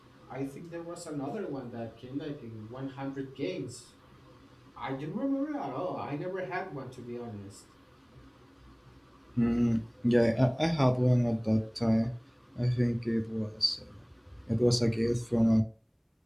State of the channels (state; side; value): identical; both; correlation 1.00